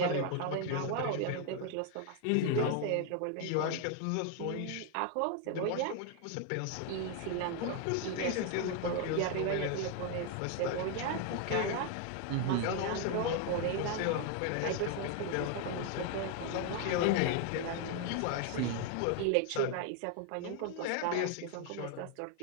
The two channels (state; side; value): different; both; correlation 0.00